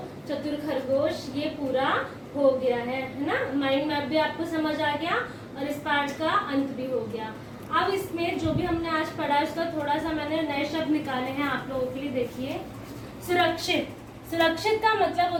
चतुर खरगोश, ये पूरा हो गया है ना। माइंड मैप भी आपको समझ आ गया और इस पार्ट का अंत भी हो गया। अब इसमें जो भी हमने आज पढ़ा उसका थोड़ा सा मैंने नए शब्द निकाले हैं आप लोगों के लिए। देखिए, सुरक्षित। सुरक्षित का मतलब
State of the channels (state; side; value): identical; both; correlation 1.00